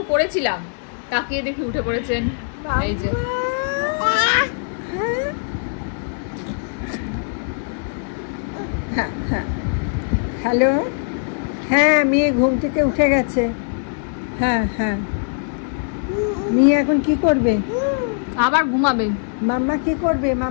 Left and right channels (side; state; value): right; silent; digital silence